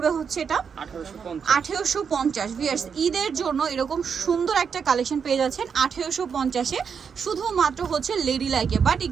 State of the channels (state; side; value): quieter; left; 6.6 dB